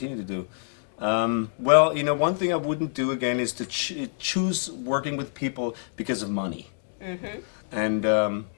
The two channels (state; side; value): silent; right; digital silence